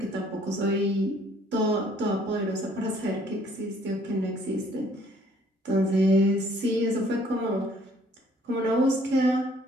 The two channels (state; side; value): normal; both; correlation 0.60